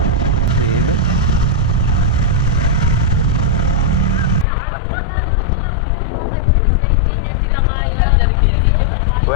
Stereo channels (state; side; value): drops out; right; at 4.5 s